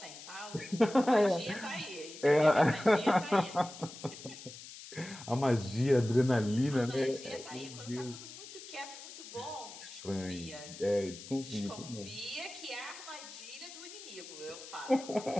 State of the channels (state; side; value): noise; left; hiss, 14 dB below the sound